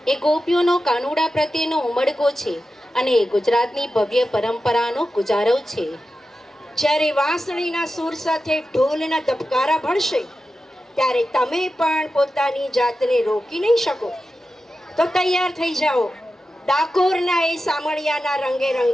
એ ગોપીઓનો કાનુડા પ્રત્યેનો ઉમળકો છે અને એ ગુજરાતની ભવ્ય પરંપરાનો ગુજારવ છે. જ્યારે વાંસળીના સૂર સાથે ઢોલના ધબકારા ભળશે ત્યારે તમે પણ પોતાની જાતને રોકી નહીં શકો. તો તૈયાર થઈ જાઓ ડાકોરના એ સામળિયાના રંગે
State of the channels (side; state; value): both; normal; correlation 0.92